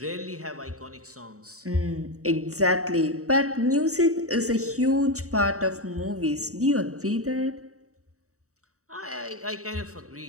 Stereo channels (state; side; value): late; left; 0.65 ms